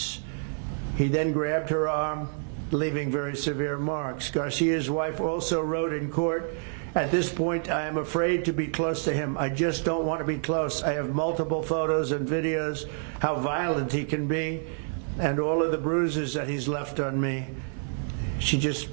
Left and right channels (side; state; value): left; silent; 59 dB below the other